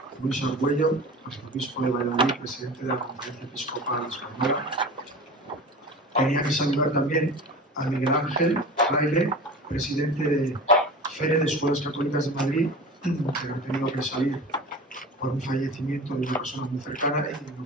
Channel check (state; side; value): normal; both; correlation 0.34